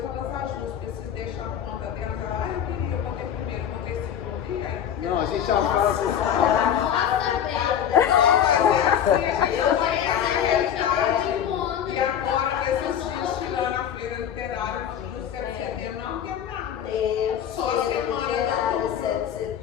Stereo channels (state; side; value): quieter; right; 9.3 dB